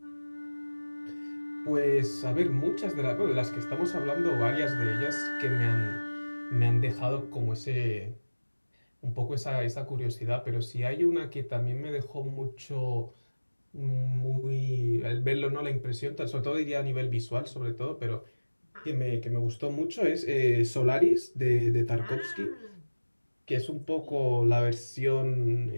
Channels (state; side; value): inverted; both; correlation -1.00